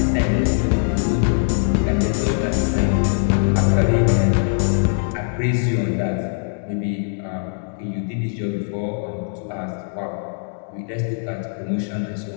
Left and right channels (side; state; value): right; silent; 65 dB below the other